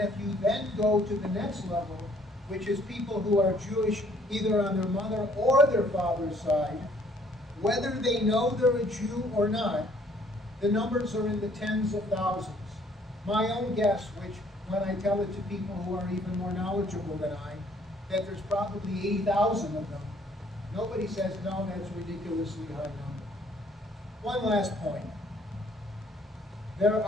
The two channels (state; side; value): normal; both; correlation 0.61